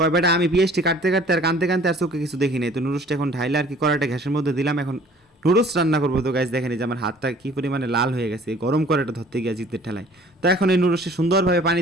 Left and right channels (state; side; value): normal; both; correlation 0.52